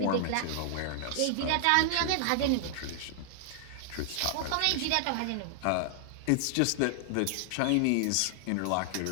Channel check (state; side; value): different; both; correlation 0.00